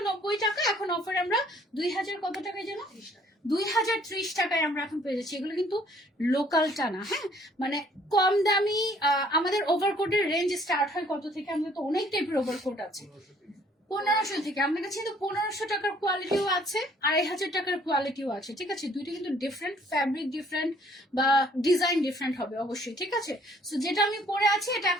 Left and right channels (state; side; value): normal; both; correlation 0.60